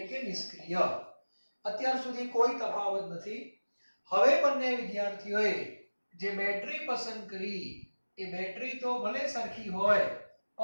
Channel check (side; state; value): both; inverted; correlation -1.00